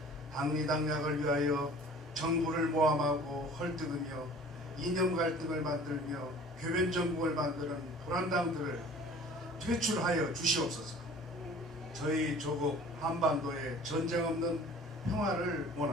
당리당략을 위하여 정부를 모함하고 헐뜯으며 이념 갈등을 만들며 교변정국을 만드는 불안당들을 퇴출하여 주시옵소서. 저희 조국 한반도에 전쟁 없는 평화를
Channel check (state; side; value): normal; both; correlation 0.47